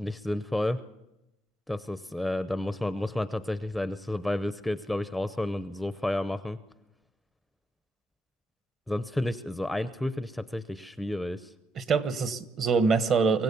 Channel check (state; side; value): normal; both; correlation 0.81